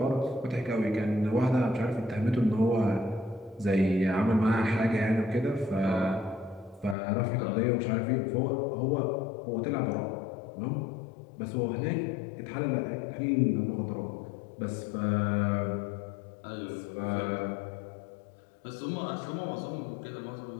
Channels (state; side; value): drops out; right; at 7.0 s